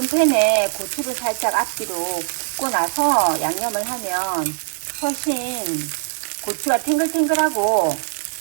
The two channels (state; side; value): silent; left; digital silence